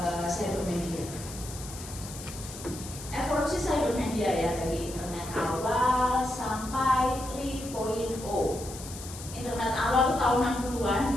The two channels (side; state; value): left; noise; hiss, 13 dB below the sound